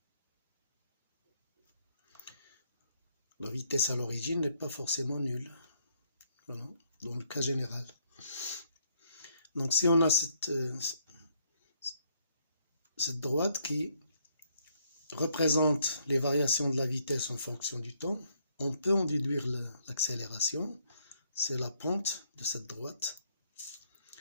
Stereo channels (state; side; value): inverted; both; correlation -0.71